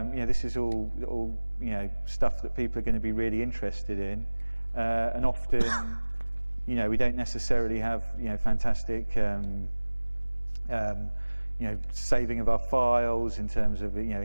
is all stuff that people are going to be really interested in, and often, we don't necessarily have fantastic saving of our files in terms of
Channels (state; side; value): inverted; both; correlation -1.00